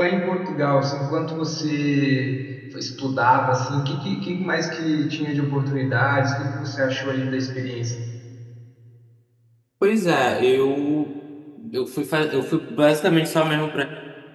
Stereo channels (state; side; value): identical; both; correlation 1.00